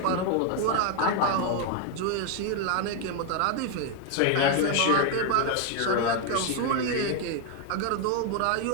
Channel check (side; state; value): both; different; correlation 0.01